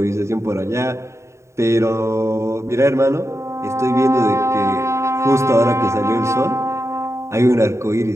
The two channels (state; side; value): late; left; 0.14 ms